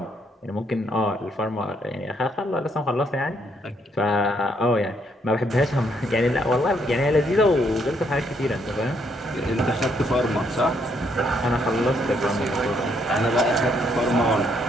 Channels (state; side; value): normal; both; correlation 0.71